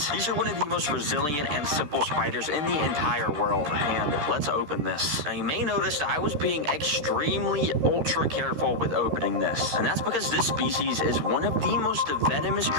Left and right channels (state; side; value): late; left; 13 ms